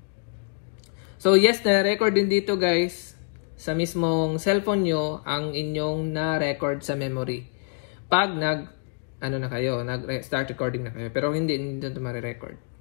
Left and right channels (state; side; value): silent; right; 61 dB below the other